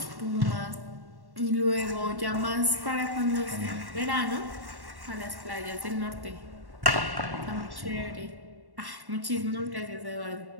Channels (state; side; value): late; left; 1.1 ms